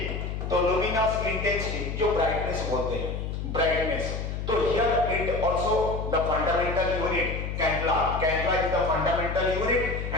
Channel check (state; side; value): noise; left; hum, 4 dB below the sound